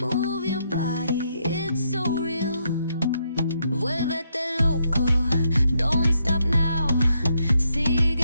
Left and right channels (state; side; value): inverted; both; correlation -0.77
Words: your body, it's so real. Vuélvete loco, don't stop now. Sigue